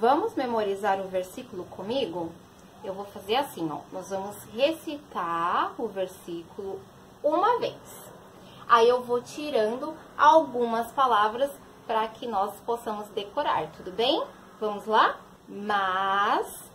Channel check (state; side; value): identical; both; correlation 1.00